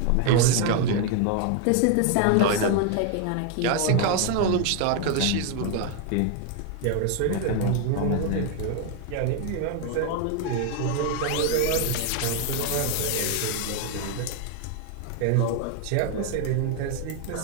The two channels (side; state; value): both; different; correlation 0.01